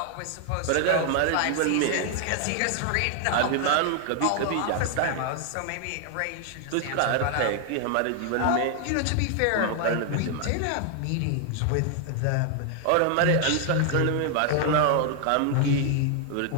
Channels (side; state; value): both; different; correlation 0.00